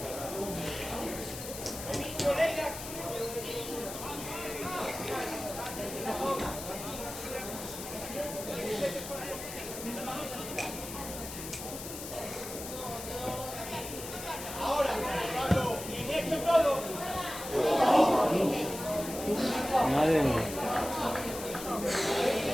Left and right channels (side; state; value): left; noise; hiss, 9 dB below the sound